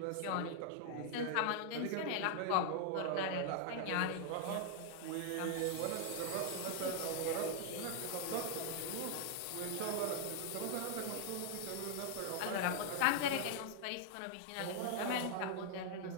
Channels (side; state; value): both; different; correlation 0.00